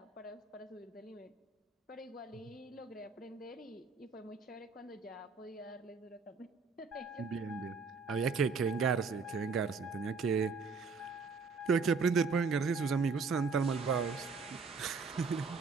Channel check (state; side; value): quieter; left; 4.8 dB